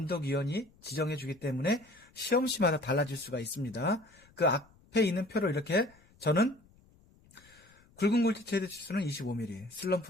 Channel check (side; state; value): left; noise; rumble, 29 dB below the sound